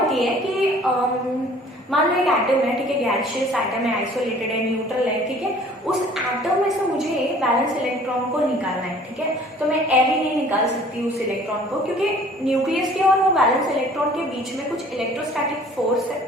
है कि मान लो एक एटम है, ठीक है, गैसियस एटम है, आइसोलेटेड है, न्यूट्रल है, ठीक है, उस एटम में से मुझे वैलेंस इलेक्ट्रॉन को निकालना है। ठीक है, तो मैं ऐसे नहीं निकाल सकती उस इलेक्ट्रॉन को, क्योंकि न्यूक्लियस के और वो वैलेंस इलेक्ट्रॉन के बीच में कुछ इलेक्ट्रोस्टैटिक फोर्स है,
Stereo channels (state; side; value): normal; both; correlation 0.52